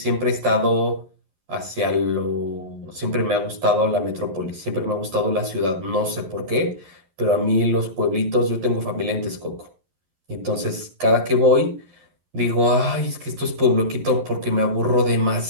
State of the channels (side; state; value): left; late; 11 ms